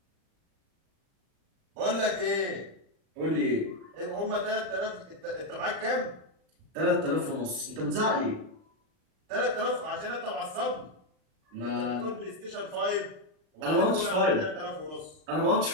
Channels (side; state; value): left; late; 39 ms